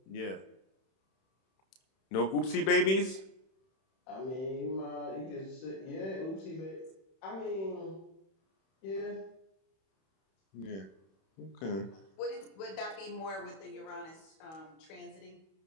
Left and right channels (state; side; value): late; right; 31 ms